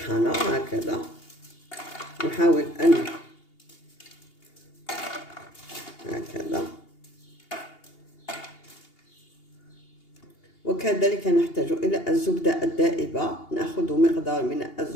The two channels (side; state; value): right; late; 2.8 ms